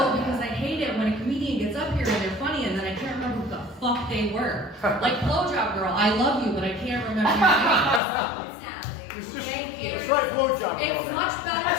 because I hate it when a comedian gets up here and they're funny and then I can't remember who the fuck they were. Like Blowjob Girl, I love you, but I can't remember your name. Thank you. It's like Blowjob Girl. It's much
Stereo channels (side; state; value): right; drops out; at 8.0 s